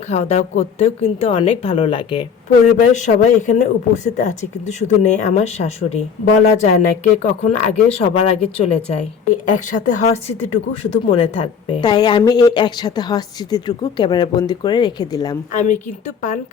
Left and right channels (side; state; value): right; quieter; 6.8 dB